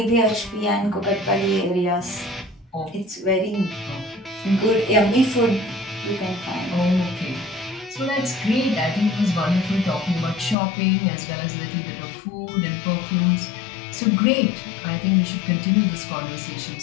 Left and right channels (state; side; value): drops out; right; at 10.6 s